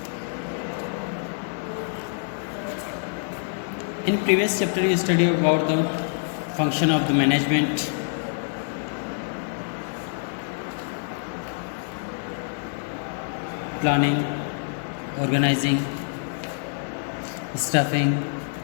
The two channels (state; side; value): silent; right; digital silence